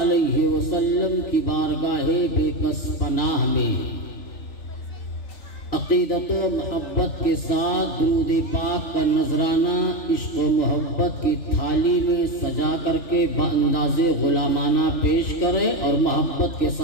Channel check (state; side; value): late; right; 3.4 ms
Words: علیہ وسلم کی بارگاہ بے کس پناہ میں عقیدت و محبت کے ساتھ درود پاک کا نذرانہ عشق و محبت کی تھالی میں سجا کر کے بانداز غلامانہ پیش کریں اور محبت کے